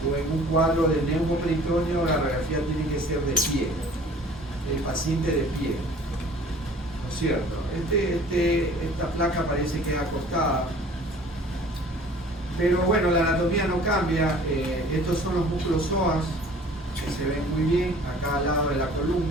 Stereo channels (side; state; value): both; normal; correlation 0.49